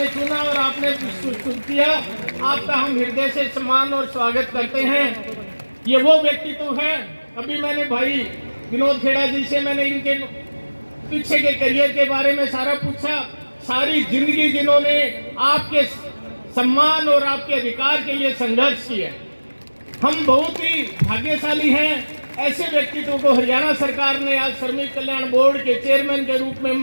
चुना और आपने किया। आपका हम हृदय से सम्मान और स्वागत करते हैं। ये वो व्यक्तित्व है, अभी मैंने भाई विनोद खेड़ा जी से मैंने इनके पीछे के करियर के बारे में सारा पूछा। सारी जिंदगी जिन्होंने आपके सम्मान और आपके अधिकार के लिए संघर्ष किया। हम बहुत ही भाग्यशाली हैं, ऐसे व्यक्तित्व को हरियाणा सरकार ने आज श्रमिक कल्याण बोर्ड के चेयरमैन के रूप में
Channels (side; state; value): both; inverted; correlation -1.00